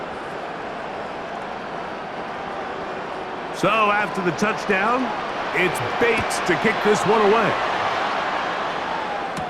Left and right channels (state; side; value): identical; both; correlation 1.00